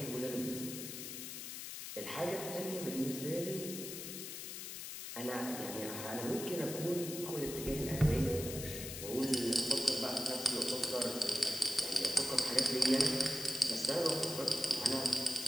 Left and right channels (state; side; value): noise; left; hiss, 7 dB below the sound